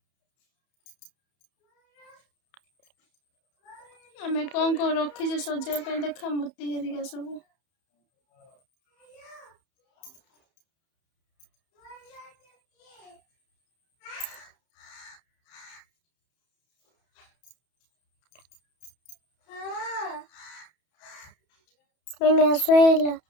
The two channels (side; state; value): right; late; 31 ms